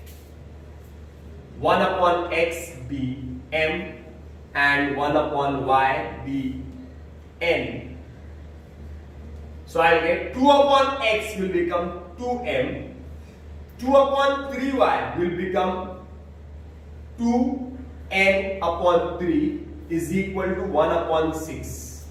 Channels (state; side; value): identical; both; correlation 1.00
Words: 1 upon x be m and 1 upon y be n. So I'll get 2 upon x will become 2m, 2 upon 3y will become 2n upon 3 is equal to 1 upon 6.